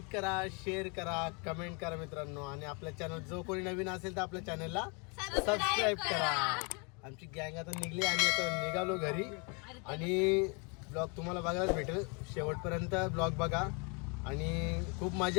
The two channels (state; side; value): quieter; right; 33.2 dB